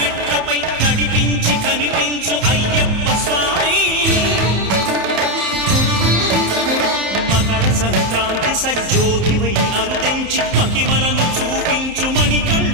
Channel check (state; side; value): late; left; 31 ms